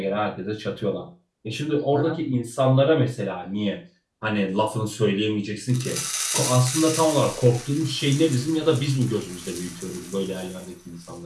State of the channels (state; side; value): identical; both; correlation 1.00